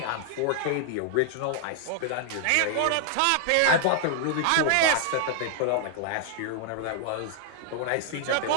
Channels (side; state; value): both; different; correlation -0.01